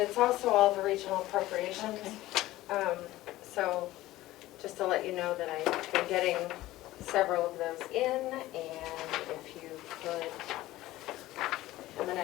also all the regional appropriations. So just to let you know that I've been getting several of those in, and if you could,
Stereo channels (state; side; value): quieter; right; 16.6 dB